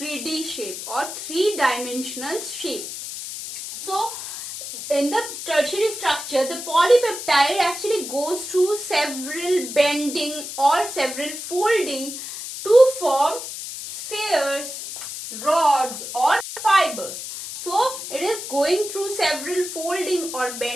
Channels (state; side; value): noise; left; hiss, 8 dB below the sound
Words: shape or three-dimensional shape. So in the tertiary structure, the polypeptide actually goes through several bending or several folding to form spheres, rods or fibers. several folding or